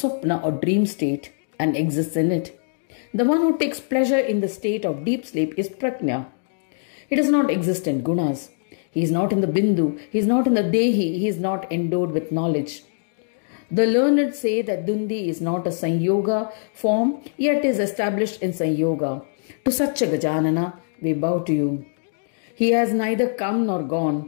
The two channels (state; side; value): silent; right; digital silence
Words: or dream state and exists in it. The one who takes pleasure in the state of deep sleep is Prajna. He does not exist in gunas. He is not in the Bindu. He is not in the Dehi. He is not endowed with knowledge. The learned say that Dundi is not a Sanyoga form, yet is established in Sanyoga. To such a Gajanana, we bow to you. He has neither come nor